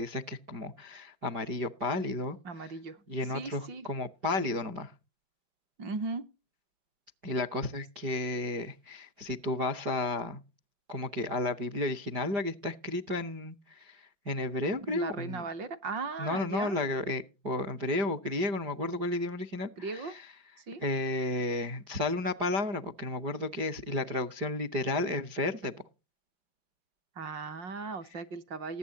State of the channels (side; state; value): left; late; 5.0 ms